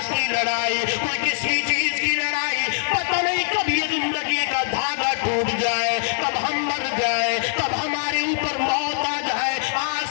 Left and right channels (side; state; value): right; silent; 64 dB below the other